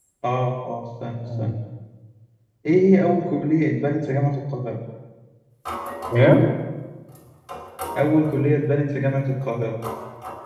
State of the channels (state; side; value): identical; both; correlation 1.00